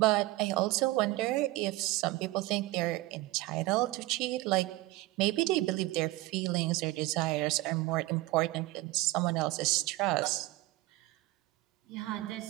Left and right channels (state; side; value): quieter; left; 19.5 dB